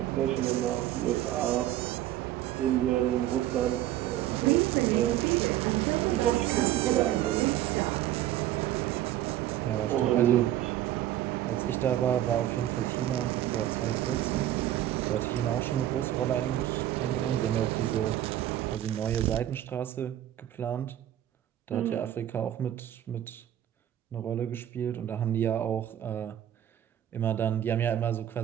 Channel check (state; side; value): quieter; left; 12.6 dB